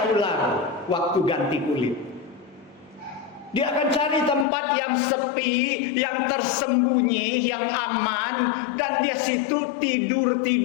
ular waktu ganti kulit? Dia akan cari tempat yang sepi, yang tersembunyi, yang aman, dan dia situ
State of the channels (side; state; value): right; drops out; at 4.5 s